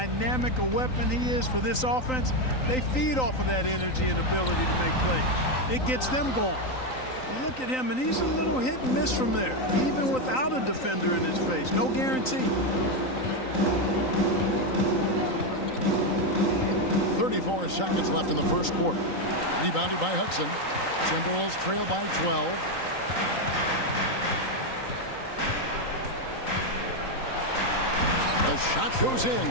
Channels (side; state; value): right; late; 3.9 ms